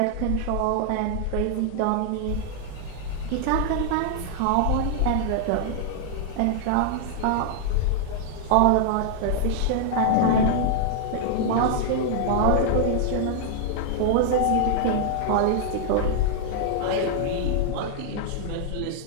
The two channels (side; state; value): both; different; correlation -0.01